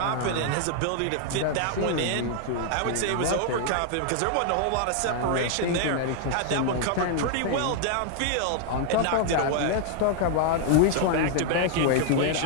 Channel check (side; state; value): both; different; correlation 0.00